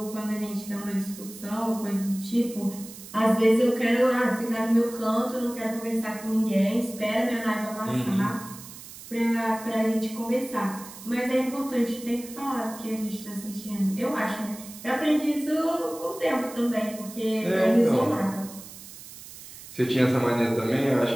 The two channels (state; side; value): noise; right; hiss, 15 dB below the sound